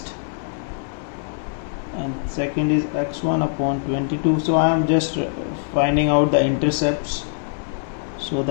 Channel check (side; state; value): right; silent; 61 dB below the other